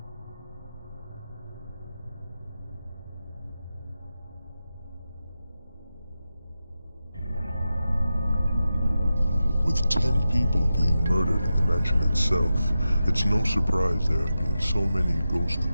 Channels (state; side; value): inverted; both; correlation -0.91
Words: With 10 people being murdered in the mansion itself, it's no surprise there have been so many ghost